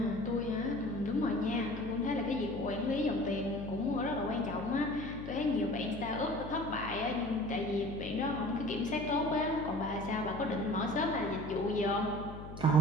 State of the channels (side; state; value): left; noise; hum, 11 dB below the sound